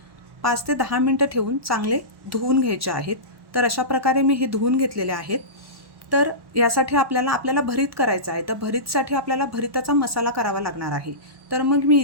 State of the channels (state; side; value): late; left; 1.1 ms